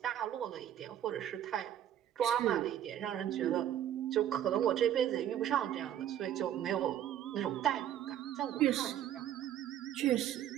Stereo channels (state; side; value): quieter; left; 11.0 dB